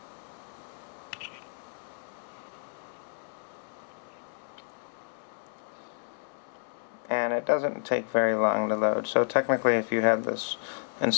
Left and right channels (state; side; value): silent; right; 57 dB below the other